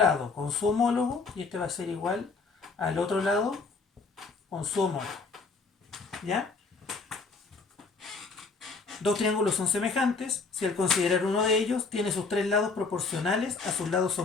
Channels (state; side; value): quieter; right; 4.3 dB